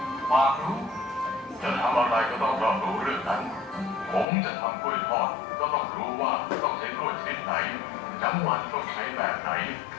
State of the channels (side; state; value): right; drops out; at 4.2 s